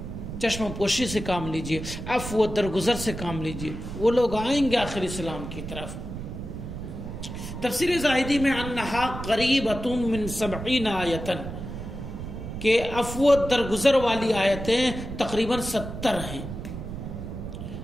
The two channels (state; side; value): noise; right; rumble, 8 dB below the sound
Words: چشم پوشی سے کام لیجیے، عفو درگزر سے کام لیجیے، وہ لوگ آئیں گے آخر اسلام کی طرف۔ تفسیر زاہدی میں انہا قریبۃ من 70 آیتن، کہ عفو درگزر والی آیتیں تقریباً 70 ہیں۔